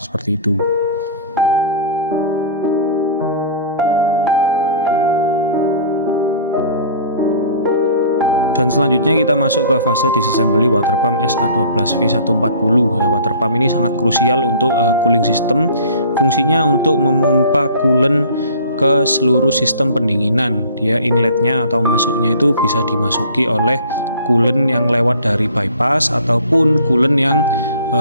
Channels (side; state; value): both; inverted; correlation -0.46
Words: itu. Dan selanjutnya kita masuk ke fase disassembly water pump SA12V140. Ya, water pump ini sangat krusial untuk cooling system. Fungsinya untuk memompa coolant ke seluruh sistem pendinginan. Dia inletnya atau masuknya itu bisa dimasuki oleh coolant yang lewat dari bypass ataupun coolant yang